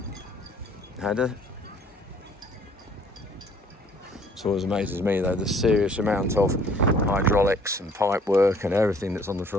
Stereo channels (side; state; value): both; normal; correlation 0.58